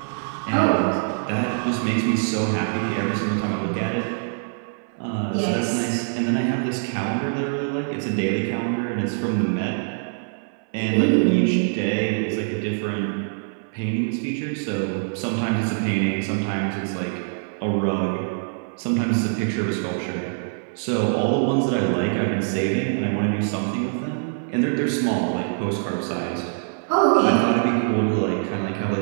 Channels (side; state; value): left; silent; 59 dB below the other